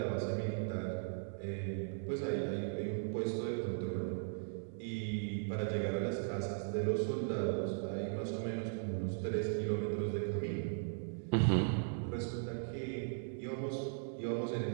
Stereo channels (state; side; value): silent; left; digital silence